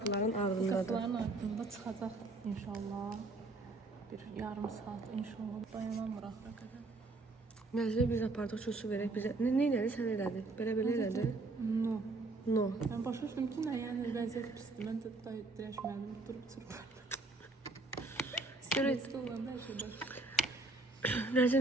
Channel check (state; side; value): quieter; left; 3.2 dB